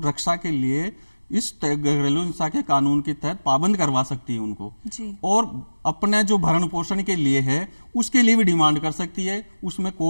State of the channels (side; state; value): both; inverted; correlation -1.00